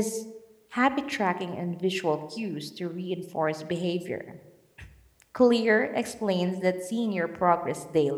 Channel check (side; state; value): both; identical; correlation 1.00